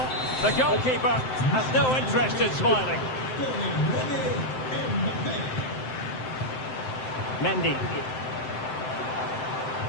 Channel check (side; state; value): right; late; 7.7 ms